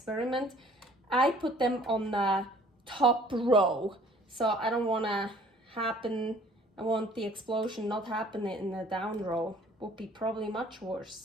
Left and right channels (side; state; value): both; normal; correlation 0.55